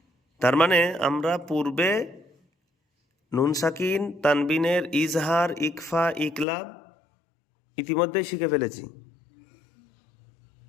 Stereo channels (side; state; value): right; drops out; at 6.5 s